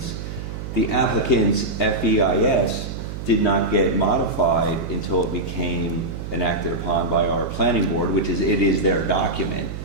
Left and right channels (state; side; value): noise; right; hum, 8 dB below the sound